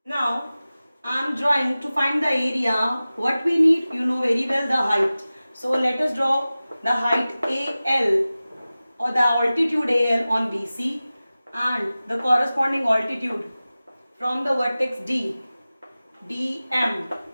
Now I am drawing to find the area. What we need, you know very well, the height. So let us draw the height AL or the altitude AL on BC and the corresponding altitude from the vertex D, DM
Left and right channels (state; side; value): inverted; both; correlation -0.97